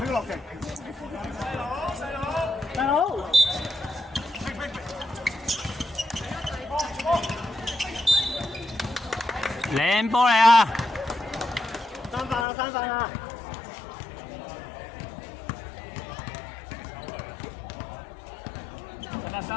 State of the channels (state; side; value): drops out; right; at 12.5 s